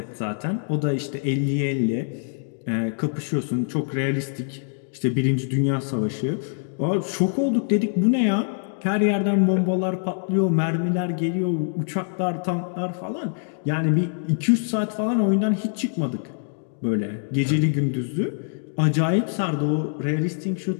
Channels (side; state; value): right; silent; digital silence